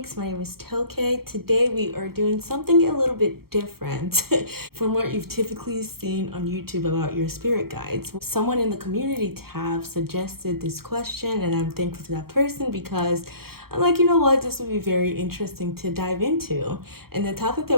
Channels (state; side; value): late; left; 0.94 ms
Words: My name is Toke. Today we are doing something a little bit different from what you've typically seen on YouTube about your spirit guides. Someone in the community tab suggested this question and I'm thankful to that person because I'm like, you know what, this would be very interesting to dive into. And the topic